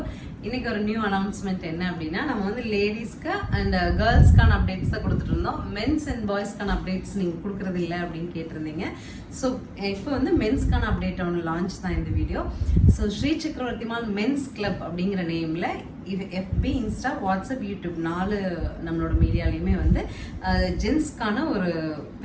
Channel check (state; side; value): identical; both; correlation 1.00